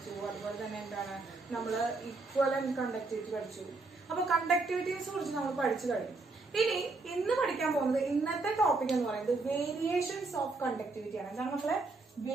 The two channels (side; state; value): left; quieter; 3.6 dB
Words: അതുപോലെ തന്നെ എന്താണ് നമ്മൾ ഇക്വലന്റ് കണ്ടക്ടിവിറ്റി പഠിച്ചു. അപ്പൊ കണ്ടക്ടിവിറ്റീസ് കുറിച്ച് നമ്മൾ പഠിച്ചു കഴിഞ്ഞു. ഇനി ഇന്ന് പഠിക്കാൻ പോകുന്നത്, ഇന്നത്തെ ടോപ്പിക് എന്ന് പറയുന്നത് വേരിയേഷൻസ് ഓഫ് കണ്ടക്ടിവിറ്റി ആണ്. എന്താണ് മക്കളെ?